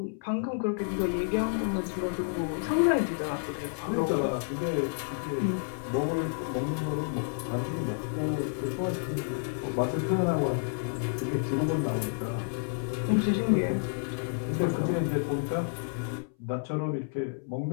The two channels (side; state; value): right; silent; 58 dB below the other